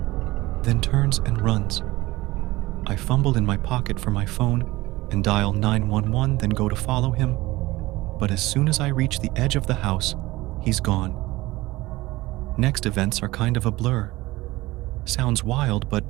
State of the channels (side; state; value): left; quieter; 19.3 dB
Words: then turns and runs. I fumble in my pocket for my phone and dial 911, then go to follow him. But as soon as I reach the edge of the house, he's gone. Next events are kind of a blur. Sounds wild, but